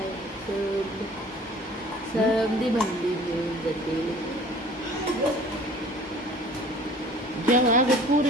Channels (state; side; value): normal; both; correlation 0.48